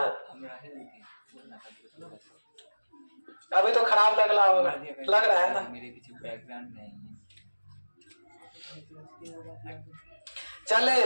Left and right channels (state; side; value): inverted; both; correlation -1.00